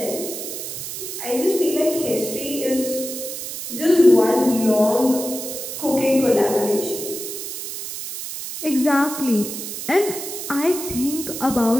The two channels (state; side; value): noise; right; hiss, 7 dB below the sound